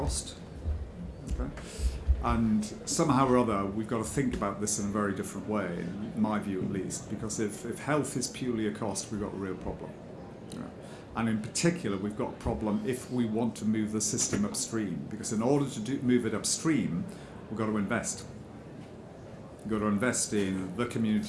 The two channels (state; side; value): identical; both; correlation 1.00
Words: Okay? And somehow or other, we've got to think about this in a very different way, in my view at least, because if health is purely a cost, we've got a real problem. And in particular, we've got a problem if we want to move the system upstream, because in order to move it upstream, we've got to invest. We've got to invest in the